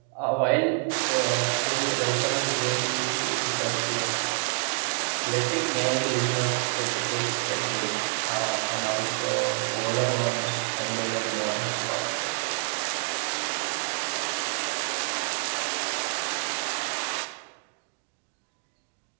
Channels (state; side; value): quieter; left; 39.5 dB